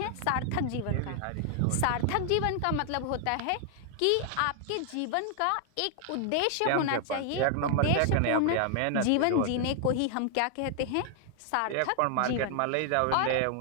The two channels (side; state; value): both; different; correlation 0.00